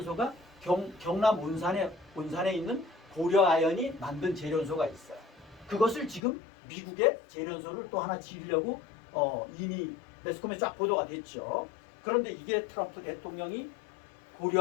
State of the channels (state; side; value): drops out; right; at 6.2 s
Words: 경남 온산에 있는 고려아연이 만든 재련소가 있어요. 그것을 지금 미국의 재련소를 또 하나 지으려고 이미 매스컴에 쫙 보도가 됐죠. 그런데 이게 트럼프 대통령이